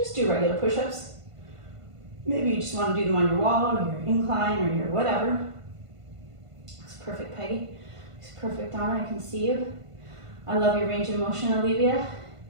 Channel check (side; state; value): left; late; 1.5 ms